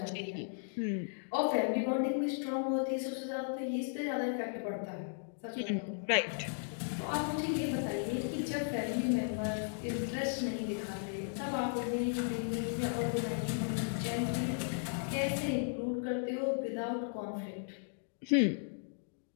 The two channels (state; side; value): silent; right; digital silence